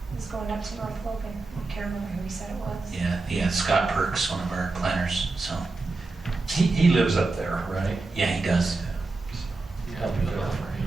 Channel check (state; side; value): quieter; left; 3.6 dB